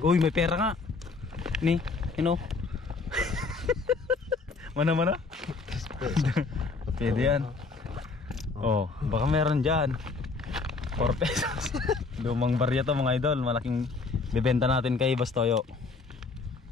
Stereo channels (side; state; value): right; quieter; 4.1 dB